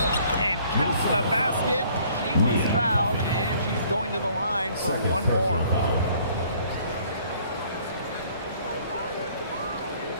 And counts the basket. She was fouled, and she's going to the line for one more.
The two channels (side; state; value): both; inverted; correlation -0.59